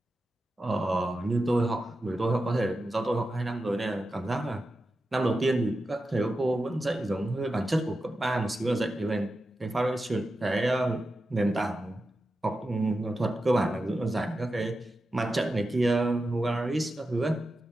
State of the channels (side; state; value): both; normal; correlation 0.91